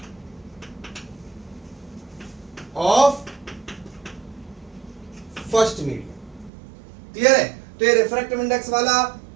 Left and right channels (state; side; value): drops out; left; at 6.5 s